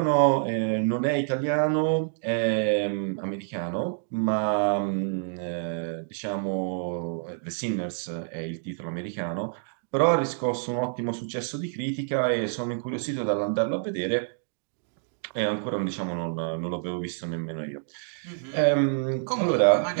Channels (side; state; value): left; silent; digital silence